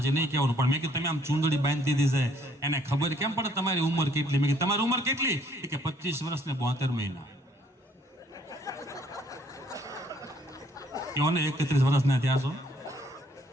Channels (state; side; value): normal; both; correlation 0.64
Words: નહીં કહેવાનું. પણ મેં કીધું તમે આમ ચૂંદડી બાંધી દીધી છે, એને ખબર કેમ પડે તમારી ઉંમર કેટલી? મેં કીધું તમારી ઉંમર કેટલી? કે 25 વર્ષ ને 72 મહિના. ને 31 વર્ષના થયા છો.